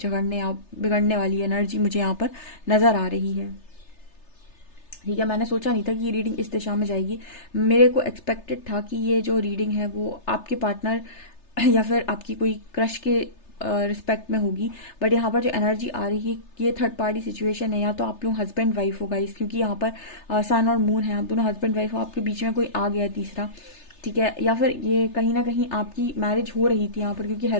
या बिगड़ने वाली एनर्जी मुझे यहाँ पर नजर आ रही है। ठीक है, मैंने सोचा नहीं था कि ये रीडिंग इस दिशा में जाएगी। मेरे को एक्सपेक्टेड था कि ये जो रीडिंग है वो आपके पार्टनर या फिर आपकी कोई क्रश के रिस्पेक्ट में होगी, बट यहाँ पर जो एनर्जी आ रही है ये थर्ड पार्टी सिचुएशन है, या तो आप लोग हस्बैंड वाइफ हो गाइस, क्योंकि यहाँ पर सन और मून है, आप दोनों हस्बैंड वाइफ हो, आपके बीच में कोई आ गया है तीसरा। ठीक है, या फिर ये कहीं ना कहीं आपकी मैरिज हो रही थी यहाँ पर, क्योंकि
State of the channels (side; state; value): right; late; 3.3 ms